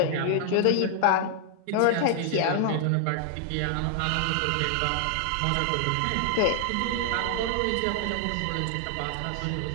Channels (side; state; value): both; different; correlation 0.00